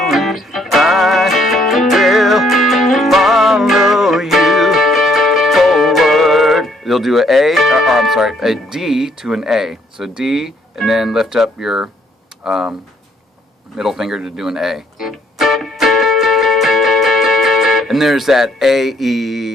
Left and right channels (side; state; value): both; normal; correlation 0.67